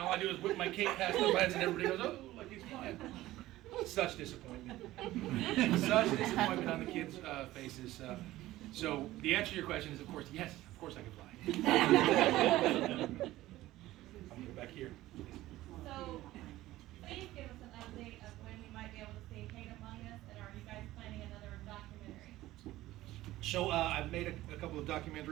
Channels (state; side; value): quieter; left; 16.2 dB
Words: I do is whip my cape past their heads, and everybody goes, oh, like he's flying. Such disappointment. Such disappointment on the kids' faces. So the answer to your question is, of course, yes, of course I can fly. I'm going to go back here. So, please give us an update of when we might be able to see Hate Among Us, and are you guys planning another documentary? So I've made a couple of